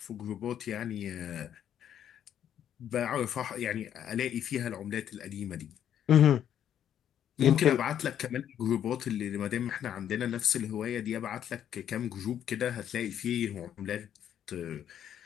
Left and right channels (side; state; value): right; quieter; 9.9 dB